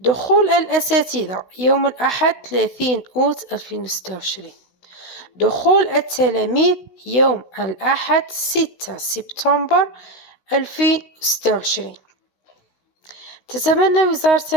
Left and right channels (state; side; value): late; right; 16 ms